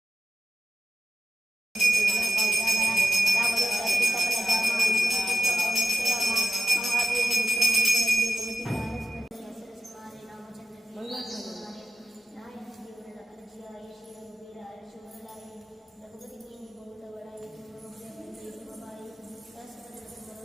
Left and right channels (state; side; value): normal; both; correlation 0.89